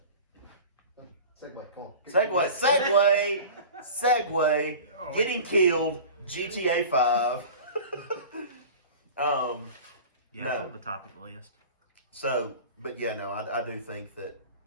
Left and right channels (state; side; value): inverted; both; correlation -0.37